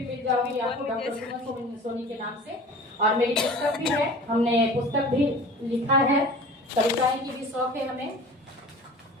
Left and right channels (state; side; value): normal; both; correlation 0.41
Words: मिल जाऊंगी आपको डॉक्टर सुमन सोनी के नाम से, और मेरी पुस्तक भी है, हमने पुस्तक भी लिखा है, कविताएं की भी शौक है हमें।